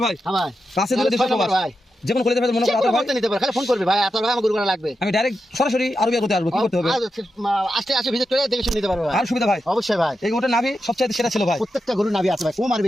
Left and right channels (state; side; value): normal; both; correlation 0.88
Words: ভাই হ্যাঁ ভাই। কাছে দিলে ছয় দেশে নম্বর প্রবাস ভাই। যে কোনো কলেজে মনে যে করো কোনো আতর ভাই করতে নিতে পারে খালি ফোন করবে ভাই আতর ভাই আমার গরু লাগবে। আমি ডাইরেক্ট সরাসরি আরবিয়া করতে আসবো কি করতে হবে? আসতে ভিজিট করে দেখে শুনে নিতে পারবে ভাই। আর সুবিধা ভাই অবশ্যই ভাই। এই গরুটা নাভি সবচেয়ে সেরা ছিল ভাই। প্রত্যেকটা গরু নাভি আছে ভাই কম আর